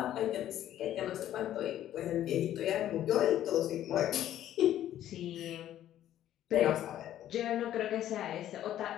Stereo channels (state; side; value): quieter; right; 12.1 dB